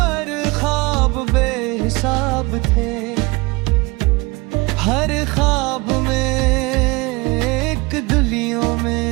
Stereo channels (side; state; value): left; quieter; 24.8 dB